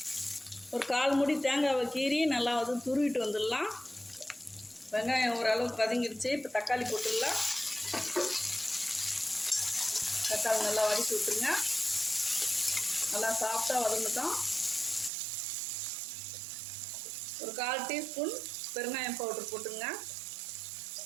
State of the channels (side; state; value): left; drops out; at 15.1 s